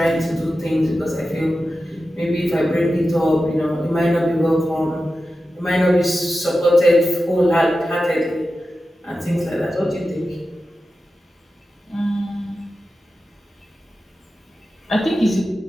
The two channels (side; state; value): both; normal; correlation 0.92